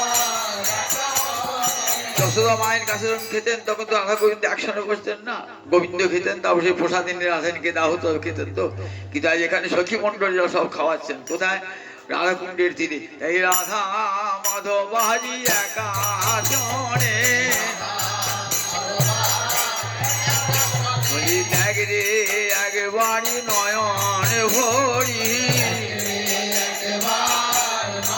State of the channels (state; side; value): identical; both; correlation 1.00